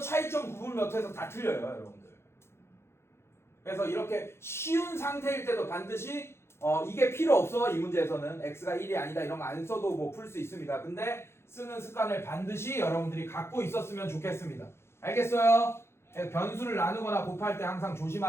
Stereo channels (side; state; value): right; late; 0.12 ms